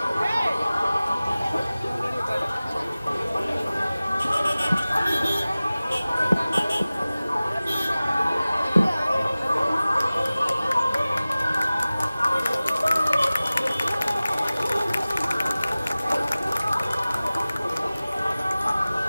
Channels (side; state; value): both; inverted; correlation -0.97